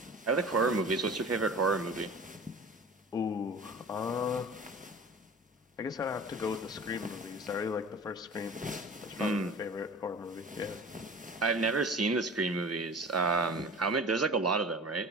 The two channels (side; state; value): both; normal; correlation 0.39